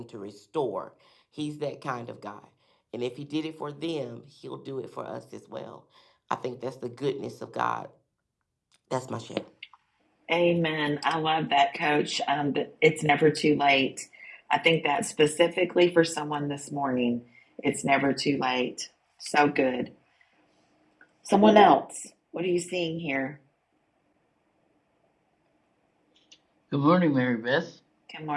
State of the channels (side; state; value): both; identical; correlation 1.00